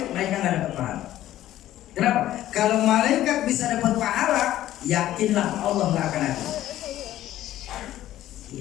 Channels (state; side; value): quieter; right; 13.6 dB